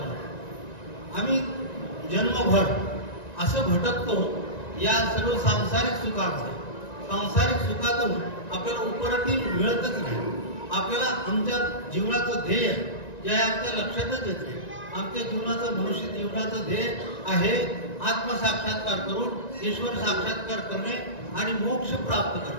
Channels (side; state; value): right; late; 1.9 ms